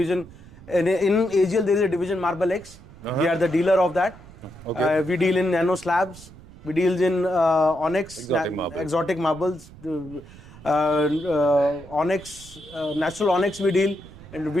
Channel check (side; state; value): right; noise; rumble, 20 dB below the sound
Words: In AGL there is a division Marblex. We are the dealer of that. Okay. We deal in nano slabs. We deals in onyx, Exotic marbles. onyx, natural onyx we deal. And